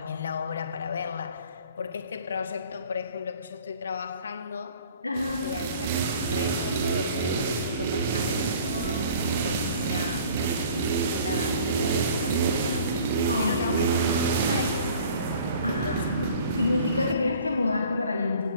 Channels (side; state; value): both; inverted; correlation -0.50